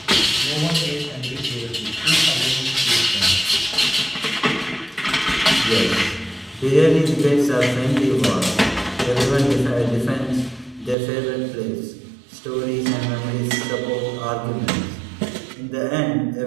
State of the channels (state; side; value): drops out; left; at 11.0 s